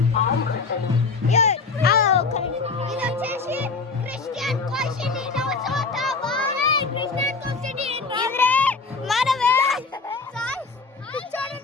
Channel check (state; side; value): quieter; right; 4.4 dB